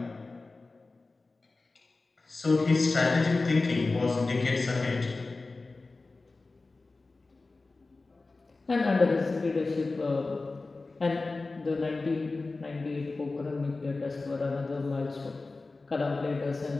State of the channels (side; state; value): right; quieter; 3.5 dB